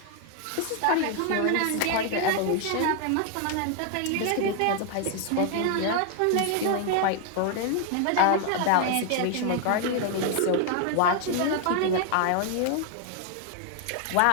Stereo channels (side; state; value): both; different; correlation 0.00